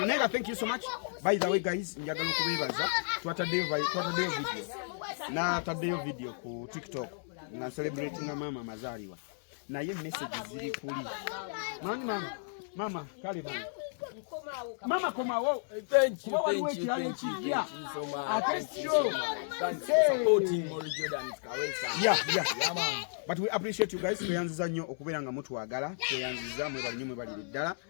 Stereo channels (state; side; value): silent; right; 56 dB below the other